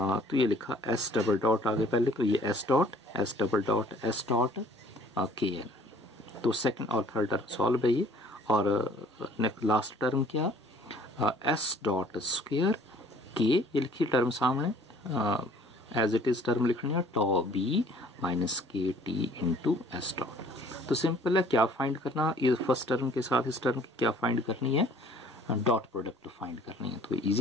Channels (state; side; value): normal; both; correlation 0.54